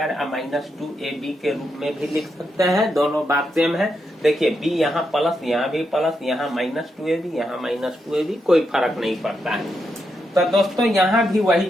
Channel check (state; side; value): normal; both; correlation 0.83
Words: minus 2ab के रूप में भी लिख सकते हैं। दोनों बात सेम है। देखिए b यहाँ प्लस, यहाँ भी प्लस, यहाँ माइनस 2ab, यहाँ माइनस 2ab, कोई फर्क नहीं पड़ता है। तो दोस्तों यहाँ भी वही